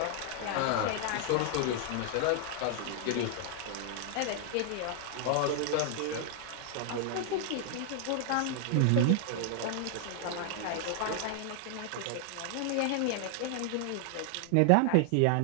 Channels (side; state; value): both; different; correlation 0.00